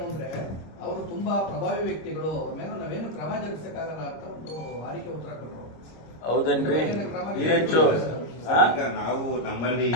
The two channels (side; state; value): right; late; 25 ms